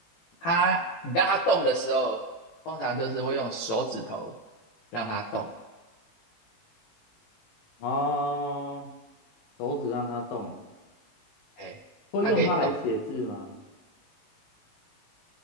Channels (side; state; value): right; late; 18 ms